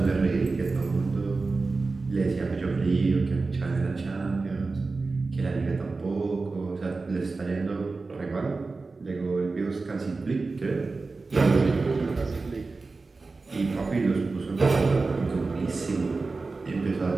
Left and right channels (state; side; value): quieter; left; 3.8 dB